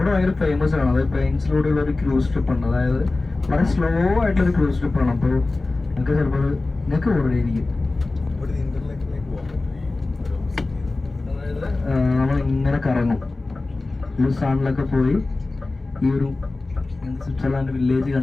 ഭയങ്കര ഫേമസ് ആണ്. അതായത് പ്ലെയിൻസിലൂടെയുള്ള ഒരു ക്രൂസ് ട്രിപ്പ് ഉണ്ട്. അതായത് വളരെ സ്ലോ ആയിട്ടുള്ളൊരു ക്രൂസ് ട്രിപ്പാണ്. അപ്പോൾ നിങ്ങൾക്ക് ചിലപ്പോൾ നിങ്ങൾക്ക് ഓർഡറിയിരിക്കും. നമ്മൾ ഇങ്ങനെ കറങ്ങും. ലൂസാണിലൊക്കെ പോയി ഈ ഒരു സ്വിറ്റ്സർലാൻഡ് വില്ലേജ്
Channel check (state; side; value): quieter; right; 3.3 dB